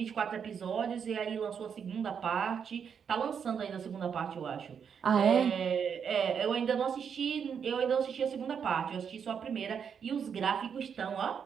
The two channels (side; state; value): left; quieter; 7.2 dB